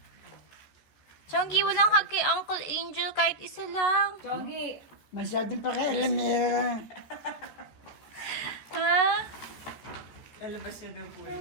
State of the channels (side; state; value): right; late; 14 ms